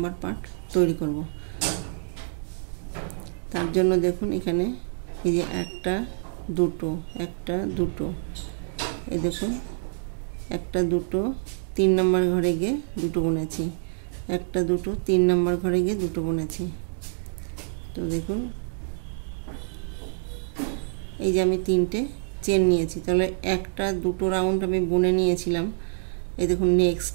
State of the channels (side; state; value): left; silent; digital silence